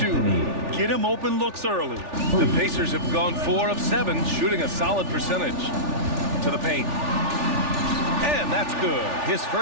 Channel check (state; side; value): late; left; 3.4 ms